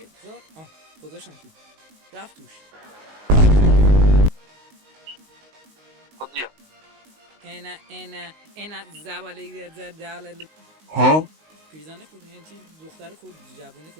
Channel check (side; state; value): left; late; 19 ms